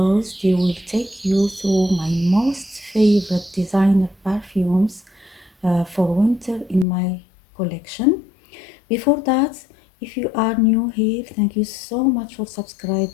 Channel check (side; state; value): right; drops out; at 6.9 s